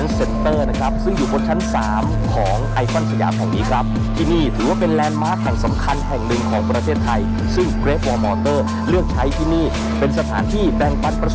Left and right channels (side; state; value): both; identical; correlation 1.00